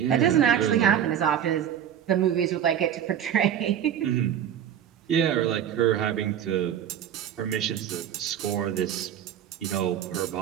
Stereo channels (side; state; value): left; quieter; 9.6 dB